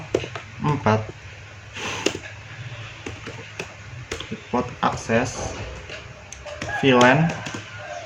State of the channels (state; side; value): identical; both; correlation 1.00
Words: port akses VLAN